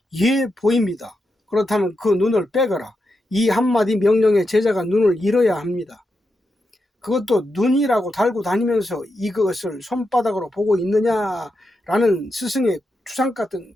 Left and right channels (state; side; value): normal; both; correlation 0.86